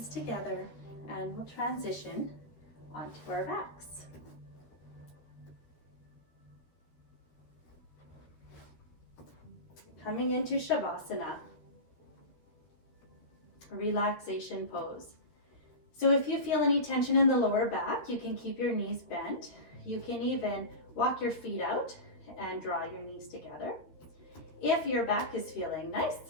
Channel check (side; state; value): right; late; 13 ms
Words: together and we'll transition onto our backs. Coming into Shavasana, relaxation pose. So if you feel any tension in the lower back, you can keep your knees bent. You can even walk your feet out and draw your knees together. If your back is feeling nice,